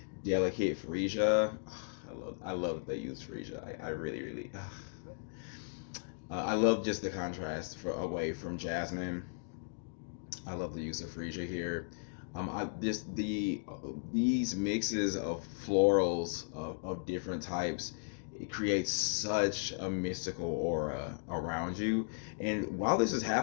delicate freesia. I love that they use freesia. I really really. I love just the contrast away from jasmine. I love the use of freesia here. I just these mixes of florals of different types, it creates such a mystical aura around you. And while this is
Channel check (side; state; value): right; silent; digital silence